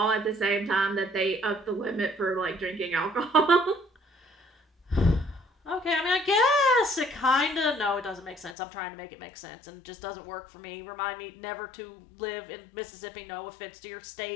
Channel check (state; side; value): drops out; right; at 8.6 s